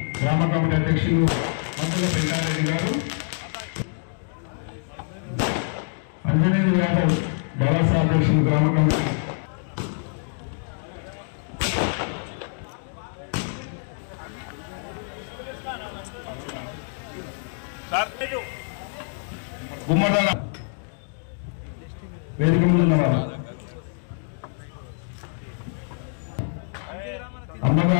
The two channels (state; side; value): silent; right; digital silence